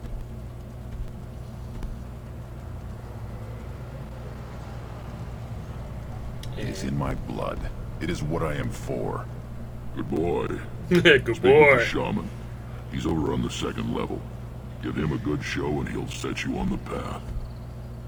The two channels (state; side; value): identical; both; correlation 1.00